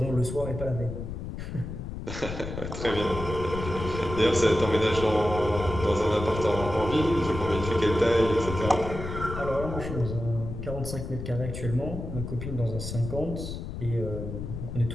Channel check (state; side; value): noise; left; rumble, 7 dB below the sound